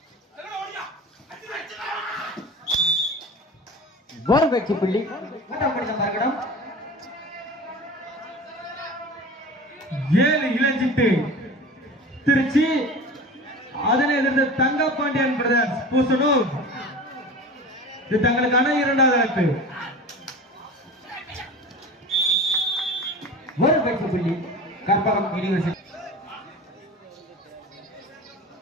ஒரு வெற்றி புள்ளி. மூன்றாம் கடிதம் மறுகடம் 7 இளஞ்சிட்டு திருச்சி. அதனை எதிர்த்து தங்கப்பாண்டியன் பிரதர்ஸ் பூசனூர். இது தங்களுக்கான இரண்டாவது அழைப்பு. ஒரு வெற்றி புள்ளி கற்பகம் யூனிவர்சிட்டி.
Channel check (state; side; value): normal; both; correlation 0.35